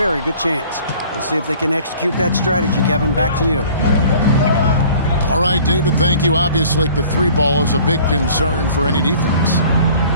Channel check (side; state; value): both; inverted; correlation -0.50